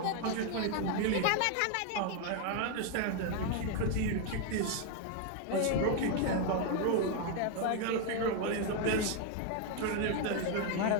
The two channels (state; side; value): different; both; correlation 0.00